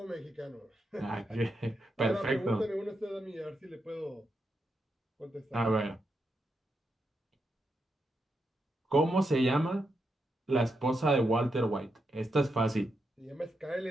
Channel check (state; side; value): normal; both; correlation 0.84